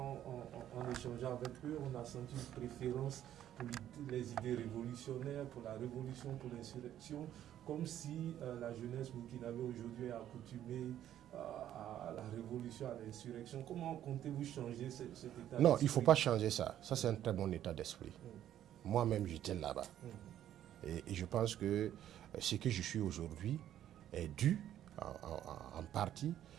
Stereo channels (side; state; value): left; quieter; 11.4 dB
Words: échangeant avec eux, on a senti une préférence pour les idées révolutionnaires, pour la révolution, pour l'insurrection, comme si la jeunesse burkinabé aujourd'hui est accoutumée à la révolution, à l'insurrection. Comment comptez-vous changer cet état d'esprit? Non, il ne faut pas changer ça. Ça, c'est un très bon état d'esprit. Moi-même, j'étais là-bas. Et je pense que ce que je suis aujourd'hui est dû en partie